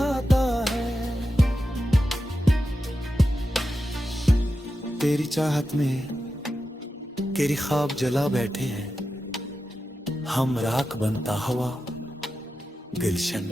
है। तेरी चाहत में तेरी ख्वाब जला बैठे हैं, हम राख बनता हवा गुलशन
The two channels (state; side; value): normal; both; correlation 0.91